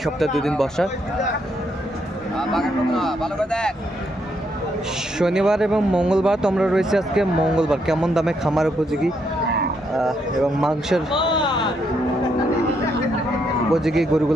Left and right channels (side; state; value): both; normal; correlation 0.76